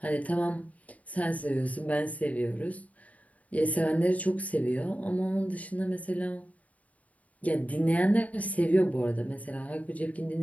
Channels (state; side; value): late; right; 0.070 ms